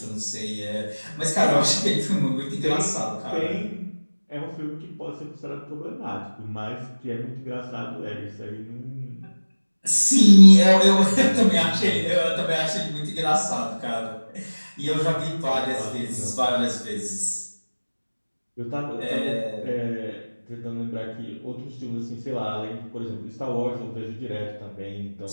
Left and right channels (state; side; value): inverted; both; correlation -1.00